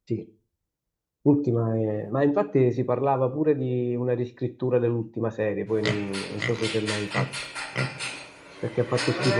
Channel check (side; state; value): both; identical; correlation 1.00